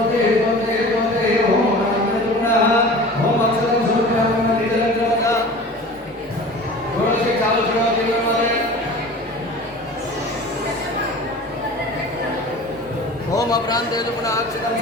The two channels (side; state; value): both; normal; correlation 0.39